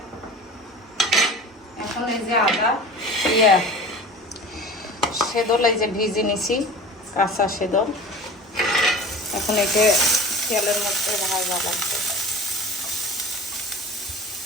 এখন এই যে আদা সেদল এই যে ভিজে নিছি, কাঁচা সেদল, এখন একে তেলের মধ্যে ভাজা লাগবে।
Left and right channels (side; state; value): both; normal; correlation 0.38